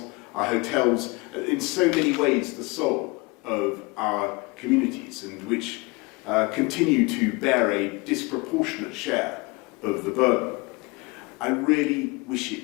our hotels, in so many ways the soul of our communities, and which continue to bear a disproportionate share of the burden. I really wish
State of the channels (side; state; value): right; quieter; 26.8 dB